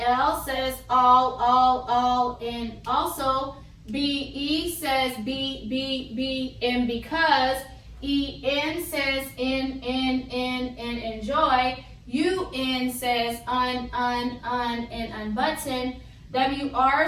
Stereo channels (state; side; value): identical; both; correlation 1.00